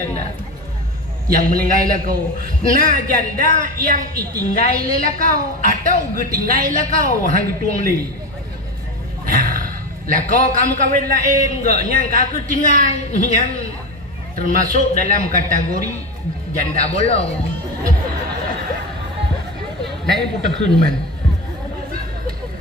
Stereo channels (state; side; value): normal; both; correlation 0.22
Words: yang meninggal kau nah janda yang itinggal kau atau getinggal kau hang tuang li lah kau kamu kawin lain enggak nyang aku tinggal yang termasuk dalam kategori janda bolong lain putar man